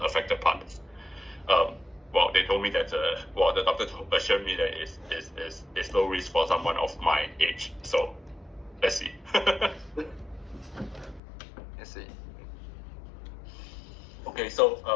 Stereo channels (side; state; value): right; drops out; at 11.2 s